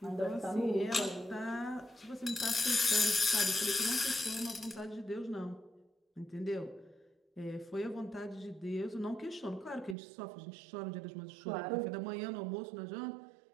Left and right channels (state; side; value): drops out; left; at 10.0 s